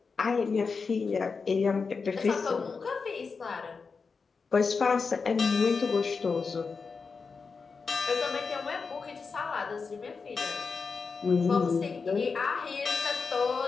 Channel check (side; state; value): right; quieter; 4.9 dB